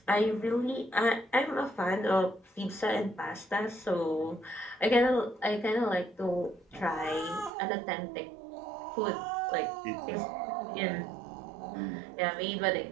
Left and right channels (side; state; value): left; drops out; at 7.5 s